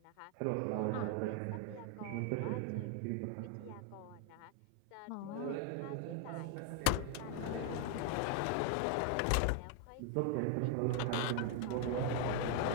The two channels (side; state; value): both; different; correlation 0.00